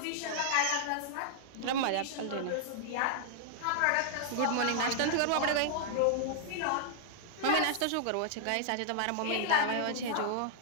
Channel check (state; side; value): different; both; correlation -0.01